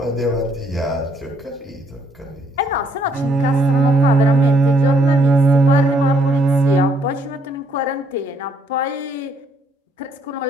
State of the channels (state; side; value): normal; both; correlation 0.69